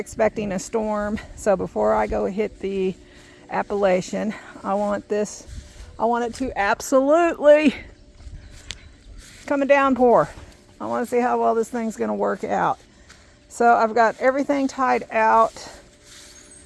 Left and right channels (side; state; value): both; identical; correlation 1.00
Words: a storm. So before I go hit the Appalachian, I want it to absolutely come a downpour. I want to see how well this thing's going to work out. So I've got everything tied out.